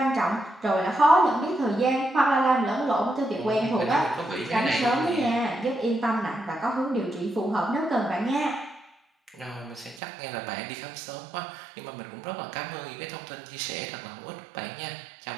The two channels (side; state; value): left; drops out; at 10.0 s